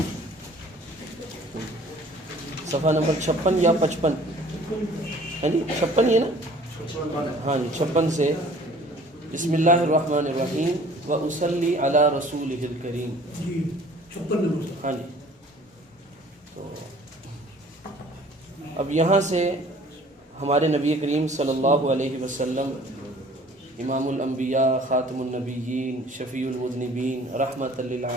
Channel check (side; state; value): both; normal; correlation 0.51